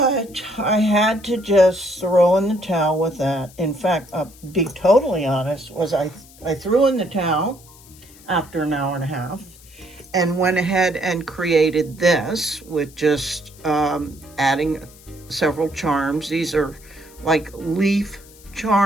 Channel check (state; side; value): noise; left; hiss, 23 dB below the sound